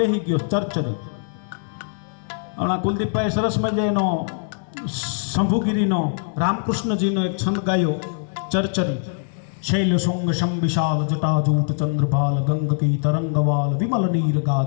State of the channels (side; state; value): right; silent; digital silence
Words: ગયો ચરચરી હમણાં કુલદીપભાઈ સરસ મજાનો શંભુગીરીનો રામકૃષ્ણજીનો એક છંદ ગાયો ચરચરી શૈલ શુંગ શમ વિશાલ જટાજૂટ ચંદ્રભાલ ગંગકી તરંગવાલ વિમલ નીર